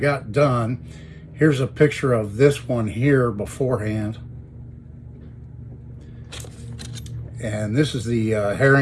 done. Here's a picture of this one here beforehand. And this is the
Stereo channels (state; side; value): identical; both; correlation 1.00